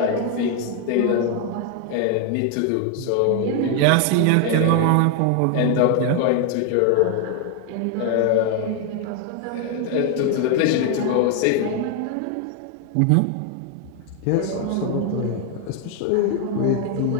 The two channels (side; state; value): both; different; correlation 0.00